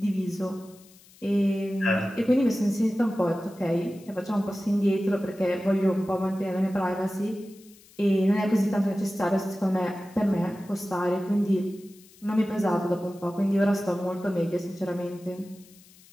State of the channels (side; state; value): left; noise; hiss, 25 dB below the sound